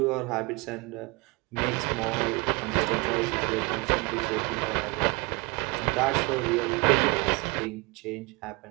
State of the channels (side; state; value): left; quieter; 26.8 dB